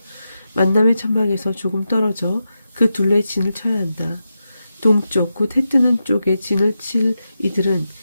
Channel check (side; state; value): both; inverted; correlation -0.88